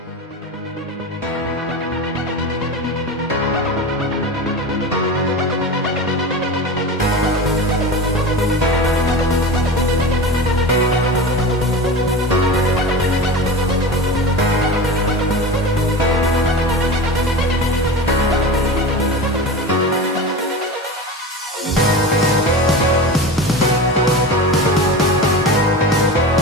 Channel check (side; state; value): both; normal; correlation 0.28